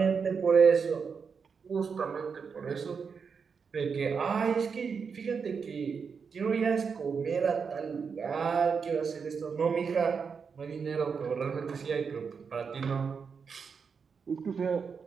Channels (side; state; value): left; quieter; 5.9 dB